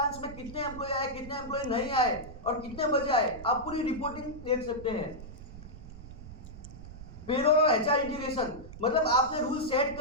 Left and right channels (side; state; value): right; noise; rumble, 14 dB below the sound